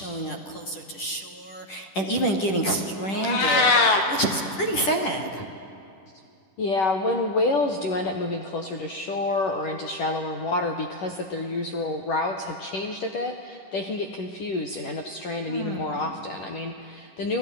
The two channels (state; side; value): late; right; 10 ms